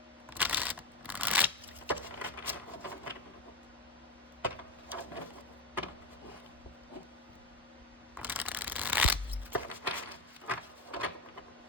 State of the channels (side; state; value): right; quieter; 3.0 dB